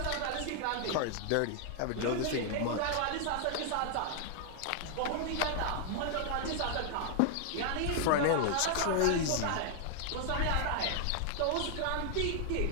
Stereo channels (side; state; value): both; different; correlation 0.00